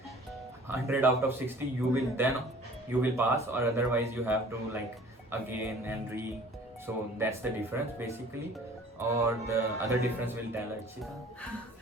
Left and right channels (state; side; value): normal; both; correlation 0.49